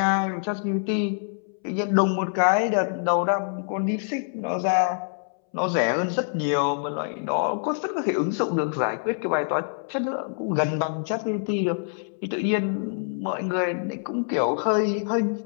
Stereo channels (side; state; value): right; silent; 61 dB below the other